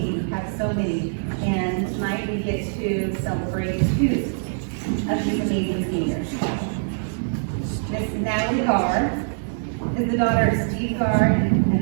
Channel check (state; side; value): silent; left; digital silence